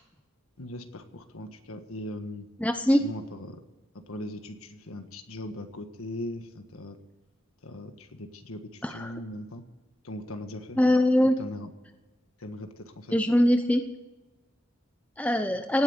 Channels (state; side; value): normal; both; correlation 0.90